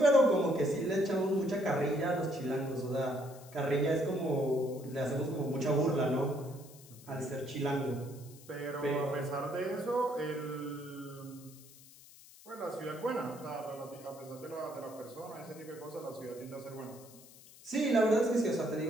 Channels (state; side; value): noise; left; hiss, 21 dB below the sound